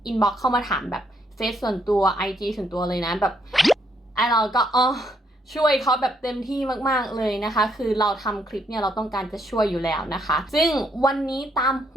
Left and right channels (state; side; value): normal; both; correlation 0.73